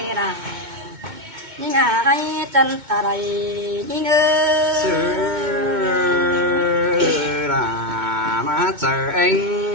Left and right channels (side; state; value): left; late; 2.2 ms